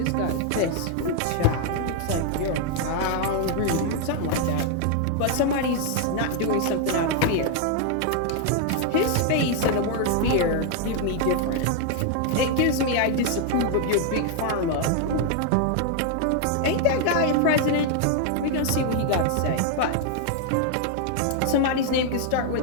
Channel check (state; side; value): different; both; correlation 0.00